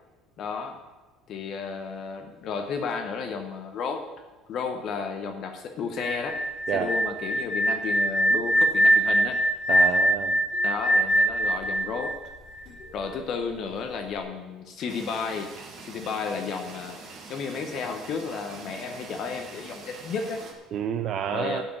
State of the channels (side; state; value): both; normal; correlation 0.75